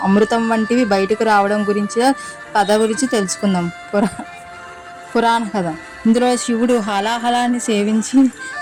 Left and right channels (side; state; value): both; identical; correlation 1.00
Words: అమృతం వంటివి బయటకు రావడం గురించి కథ గురించి తెలుసుకుందాం. పురాణ కథ. ఇందులో శివుడు హాలాహలాన్ని సేవించి